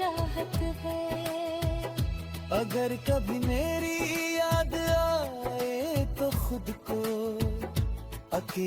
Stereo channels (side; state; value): both; identical; correlation 1.00